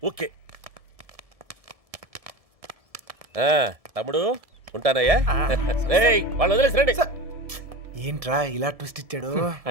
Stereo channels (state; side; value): late; left; 1.7 ms